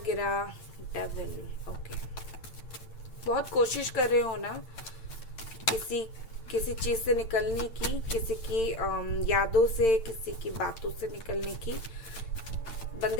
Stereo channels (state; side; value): late; right; 8.8 ms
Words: डेविल। ओके, बहुत कोशिश कर रहे हो ना किसी चीज से निकलने की, किसी की यादों से, किसी की बातों से निकलने की,